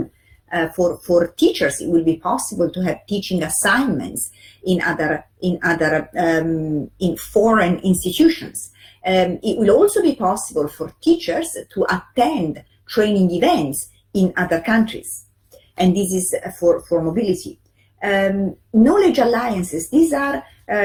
For teachers, it will be possible to have teaching assignments in foreign institutions. It will also be possible for teachers to attend training events in other countries, and this is for mobility. Knowledge alliances, these are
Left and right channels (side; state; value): both; identical; correlation 1.00